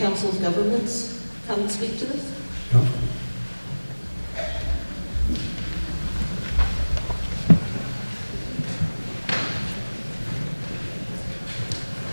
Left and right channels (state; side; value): inverted; both; correlation -1.00